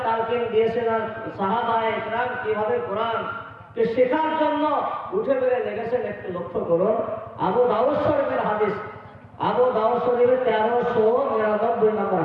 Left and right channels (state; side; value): identical; both; correlation 1.00